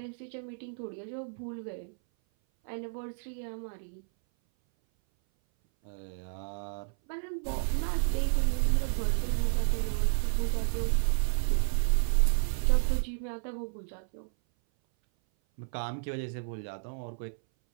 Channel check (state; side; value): silent; left; 57 dB below the other